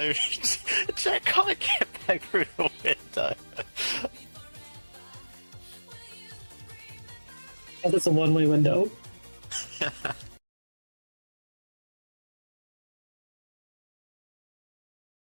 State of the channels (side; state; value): both; inverted; correlation -1.00